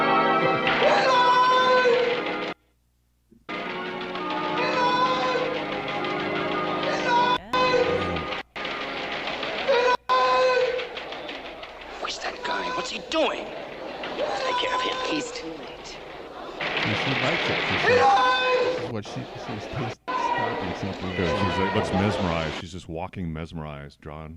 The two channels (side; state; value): both; identical; correlation 1.00